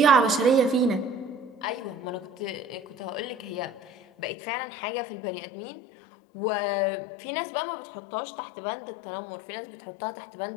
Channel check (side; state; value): right; drops out; at 4.3 s